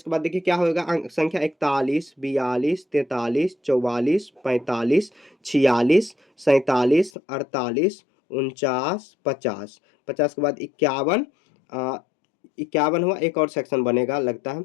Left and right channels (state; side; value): drops out; right; at 7.1 s